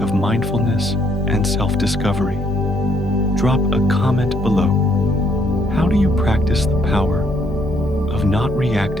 mindfulness and self-discovery. Drop a comment below. How do you practice the power of not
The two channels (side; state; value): both; normal; correlation 0.69